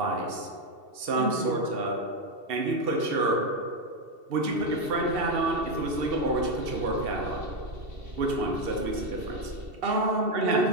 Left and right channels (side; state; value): left; late; 2.7 ms